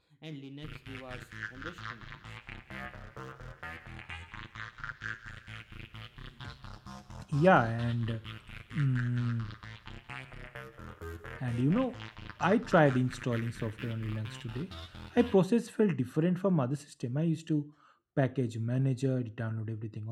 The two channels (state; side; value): identical; both; correlation 1.00